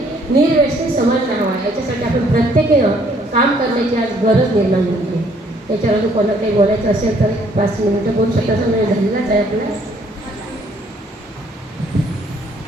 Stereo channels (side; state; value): both; normal; correlation 0.64